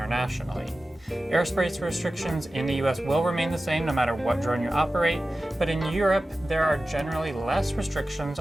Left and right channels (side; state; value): both; normal; correlation 0.95